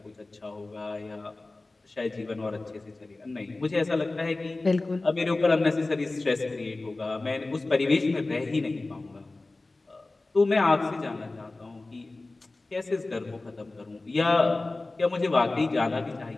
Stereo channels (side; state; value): right; quieter; 3.2 dB